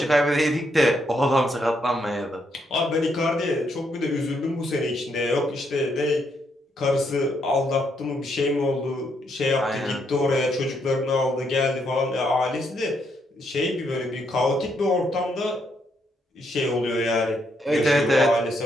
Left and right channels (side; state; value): both; normal; correlation 0.76